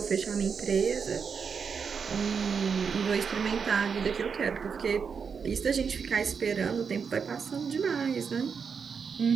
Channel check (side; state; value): left; quieter; 6.1 dB